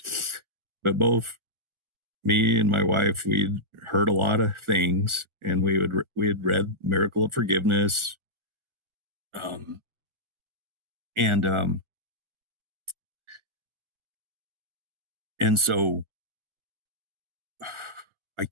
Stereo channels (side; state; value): left; late; 1.4 ms